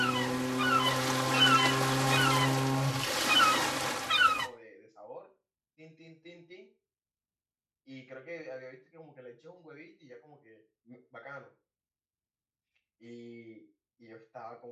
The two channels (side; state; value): both; identical; correlation 1.00